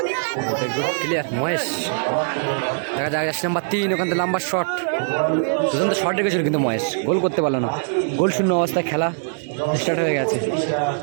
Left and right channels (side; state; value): left; silent; digital silence